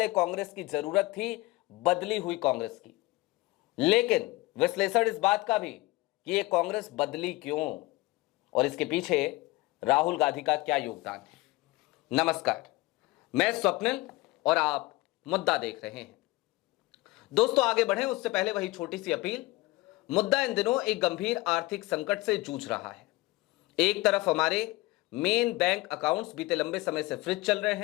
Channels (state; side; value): quieter; right; 20.9 dB